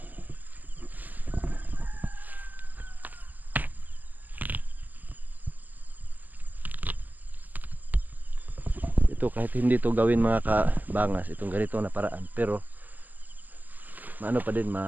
Ito kahit hindi to gawin mga kabangas, itong ganito na paraan, pero maano pa din,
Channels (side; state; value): left; late; 0.083 ms